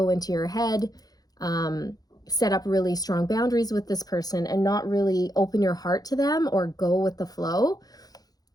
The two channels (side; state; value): right; late; 0.19 ms